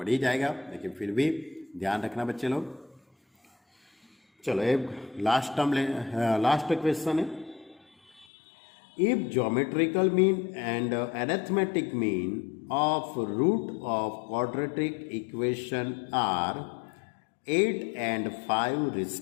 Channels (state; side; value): drops out; right; at 8.2 s